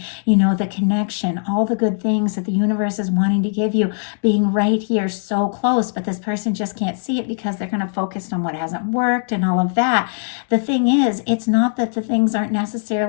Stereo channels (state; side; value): silent; right; digital silence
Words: the connection, all the good things that the universe is wanting to give you, being right here so close, but this person just can't see it because they're kind of focused on what hasn't worked and all of that. The thing is, it's not that the things aren't